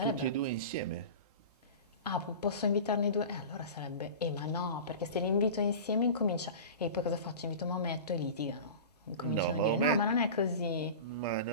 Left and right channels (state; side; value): inverted; both; correlation -0.33